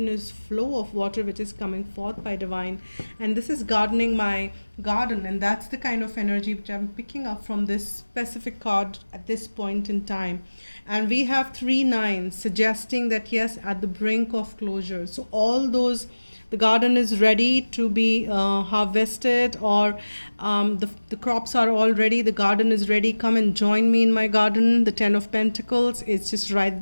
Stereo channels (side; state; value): both; inverted; correlation -1.00